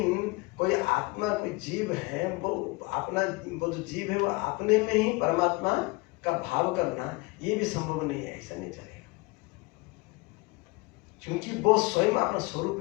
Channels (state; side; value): quieter; right; 25.3 dB